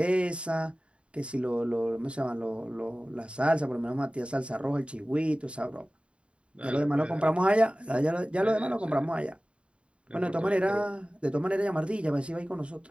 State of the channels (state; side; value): late; left; 0.058 ms